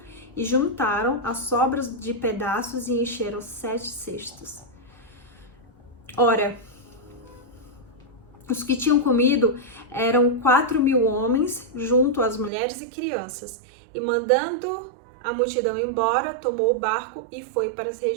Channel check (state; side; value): drops out; left; at 12.5 s